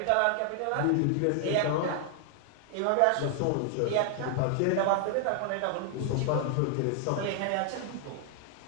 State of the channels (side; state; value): both; different; correlation 0.00